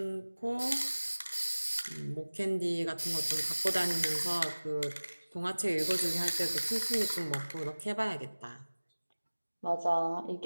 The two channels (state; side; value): inverted; both; correlation -1.00